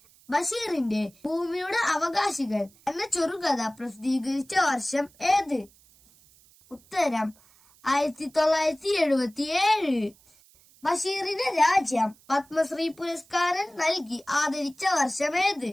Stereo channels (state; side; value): noise; right; hiss, 29 dB below the sound